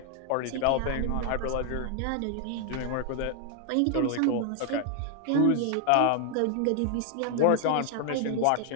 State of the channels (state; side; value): different; both; correlation 0.00